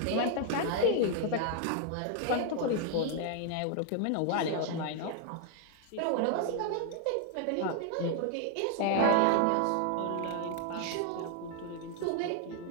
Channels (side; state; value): both; different; correlation 0.00